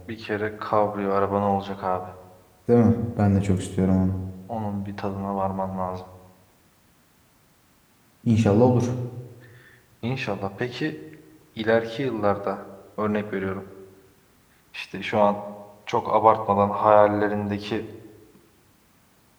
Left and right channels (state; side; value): identical; both; correlation 1.00